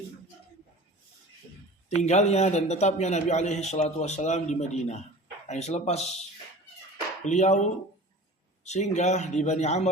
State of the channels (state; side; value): normal; both; correlation 0.40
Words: tinggalnya dan tetapnya Nabi alaihi salatu wassalam di Madinah. Yang selepas beliau singgah di Bani